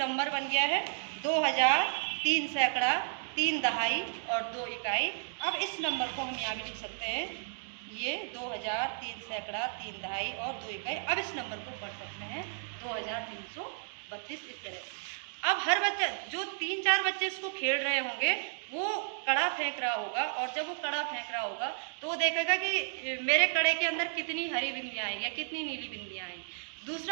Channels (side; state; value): left; silent; digital silence